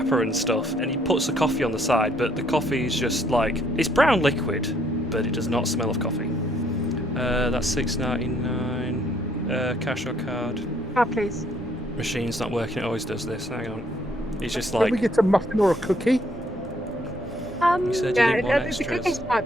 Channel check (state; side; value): normal; both; correlation 0.67